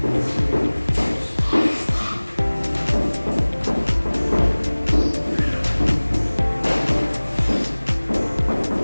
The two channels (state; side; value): inverted; both; correlation -1.00